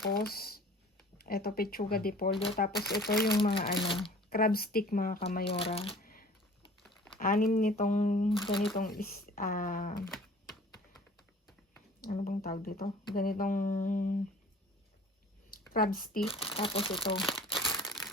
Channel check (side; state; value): both; normal; correlation 0.47